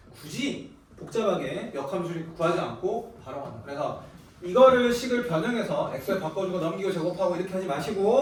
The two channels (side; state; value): both; identical; correlation 1.00